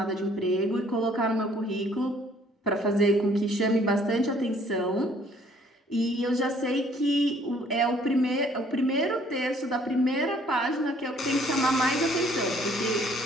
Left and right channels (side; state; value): both; normal; correlation 0.60